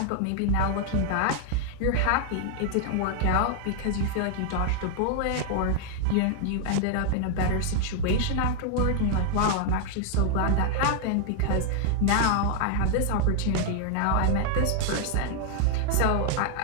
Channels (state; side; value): different; both; correlation 0.00